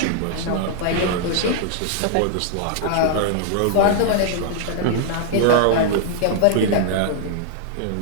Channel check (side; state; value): both; different; correlation -0.01